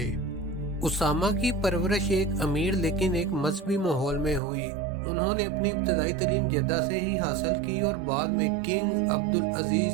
اسامہ کی پرورش ایک امیر لیکن ایک مذہبی ماحول میں ہوئی۔ انہوں نے اپنی ابتدائی تعلیم جدہ سے ہی حاصل کی اور بعد میں کنگ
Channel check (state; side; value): drops out; left; at 4.4 s